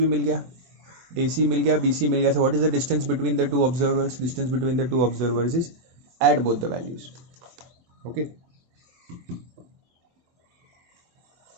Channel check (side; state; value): left; late; 24 ms